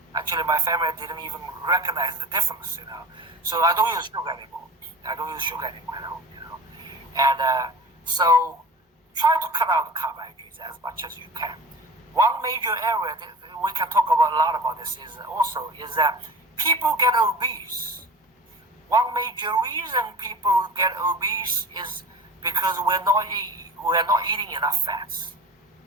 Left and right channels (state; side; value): normal; both; correlation 0.37